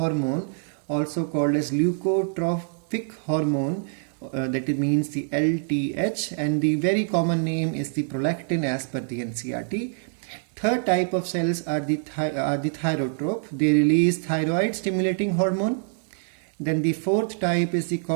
also called as leukotropic hormone. That means the LTH, and the very common name is the prolactin as per the NCERT. Third type of cells are the thyrotrope. They release thyroid stimulating hormone. Then the fourth type is the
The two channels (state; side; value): silent; left; digital silence